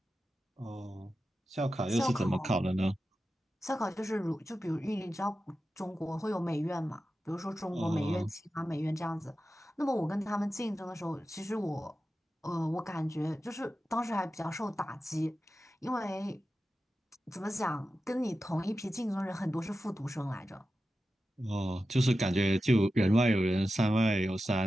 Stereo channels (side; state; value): both; normal; correlation 0.92